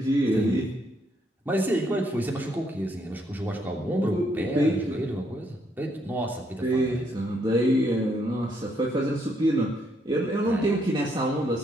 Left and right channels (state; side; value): normal; both; correlation 0.73